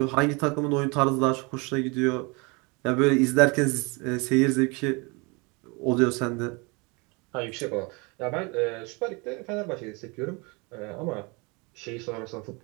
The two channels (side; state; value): left; quieter; 29.0 dB